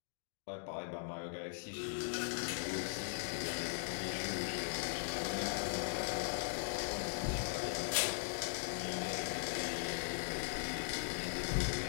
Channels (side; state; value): right; silent; digital silence